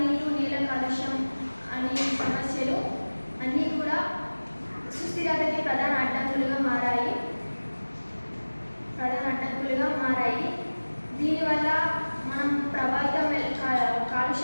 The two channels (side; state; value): both; inverted; correlation -1.00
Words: నీరు, నేల కాలుష్యం అనే సమస్యలు అన్నీ కూడా సుస్థిరతకి ప్రధాన అడ్డంకులుగా మారాయి. దీనివల్ల మనం